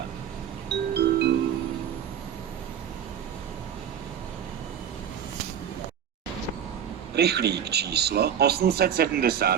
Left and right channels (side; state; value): left; quieter; 8.9 dB